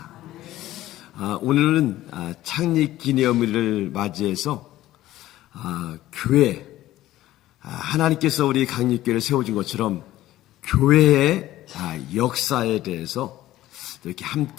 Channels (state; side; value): quieter; right; 15.0 dB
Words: 오늘은 창립 기념일을 맞이해서 교회, 하나님께서 우리 강립교회를 세워준 것처럼 교회의 역사에 대해서 이렇게